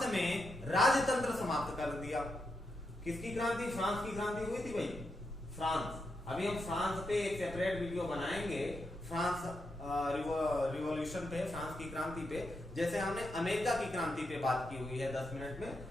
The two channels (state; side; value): normal; both; correlation 0.84